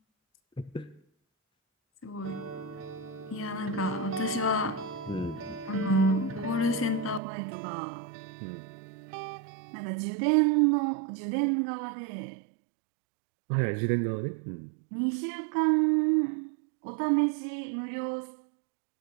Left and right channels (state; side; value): drops out; left; at 7.2 s